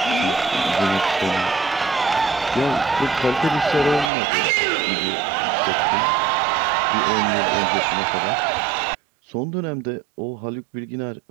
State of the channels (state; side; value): drops out; left; at 4.1 s